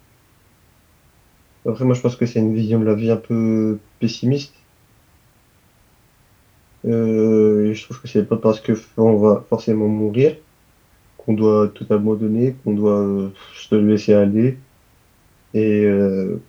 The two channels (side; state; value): both; identical; correlation 1.00